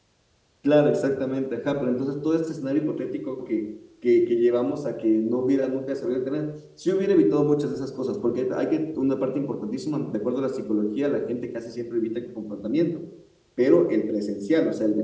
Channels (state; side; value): identical; both; correlation 1.00